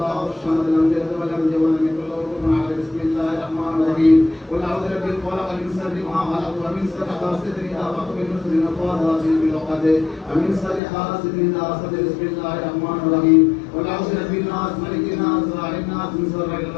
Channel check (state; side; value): drops out; right; at 10.8 s